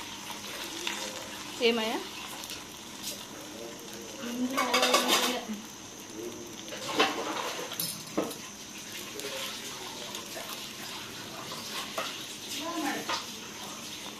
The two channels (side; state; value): both; identical; correlation 1.00